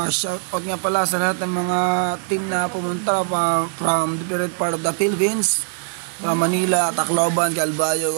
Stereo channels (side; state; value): left; silent; digital silence